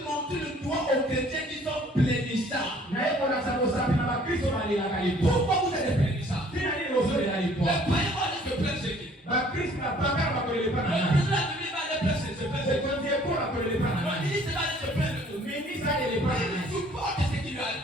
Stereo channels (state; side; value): normal; both; correlation 0.56